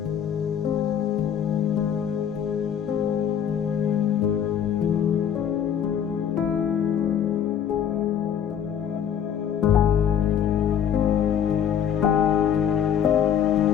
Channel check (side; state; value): right; quieter; 8.8 dB